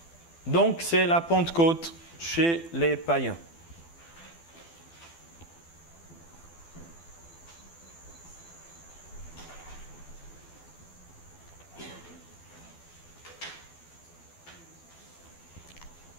Donc, c'est la Pentecôte chez les païens.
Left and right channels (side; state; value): right; late; 12 ms